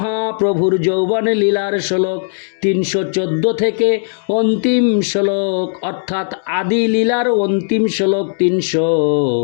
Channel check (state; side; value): silent; right; digital silence